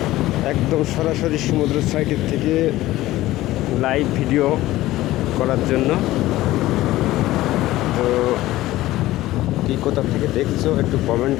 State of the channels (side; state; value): right; quieter; 16.4 dB